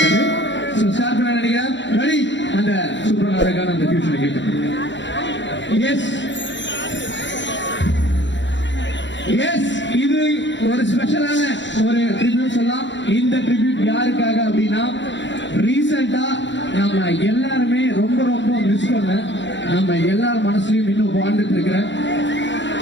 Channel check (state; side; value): late; right; 0.53 ms